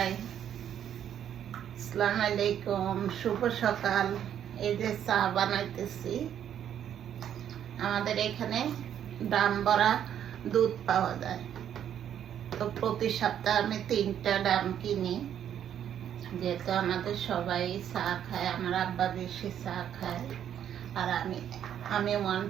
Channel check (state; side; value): quieter; left; 9.7 dB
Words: আসসালামু আলাইকুম, শুভ সকাল। এই যে চা বানাইতেছি। আমাদের এখানে দাম ভরা দুধ পাওয়া যায়, তো প্রতি সপ্তাহে আমি 3টা ডাম কিনি, যেহেতু আমাদের সবাই চা খায়। আমার আব্বা বেশি চা খায়, আর আমি ওয়ান